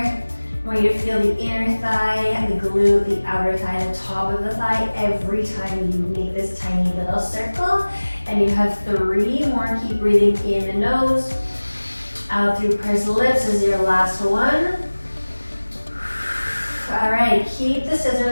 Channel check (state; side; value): inverted; both; correlation -1.00